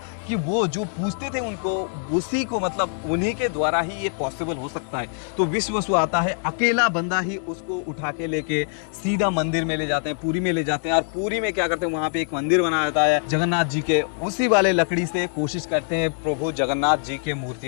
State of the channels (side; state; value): right; silent; 61 dB below the other